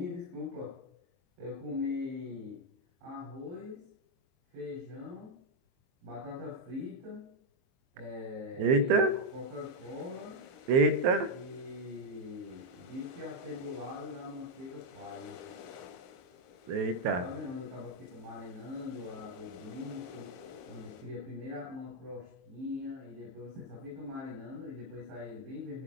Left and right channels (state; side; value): late; left; 22 ms